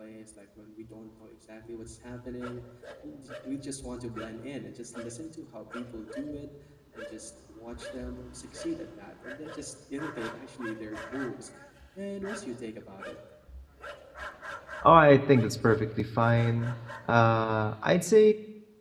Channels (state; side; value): identical; both; correlation 1.00